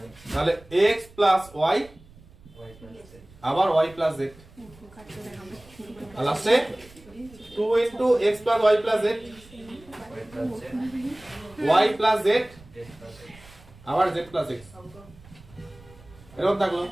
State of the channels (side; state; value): right; noise; rumble, 23 dB below the sound